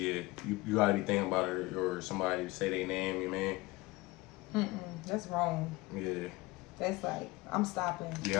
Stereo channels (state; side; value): quieter; right; 21.6 dB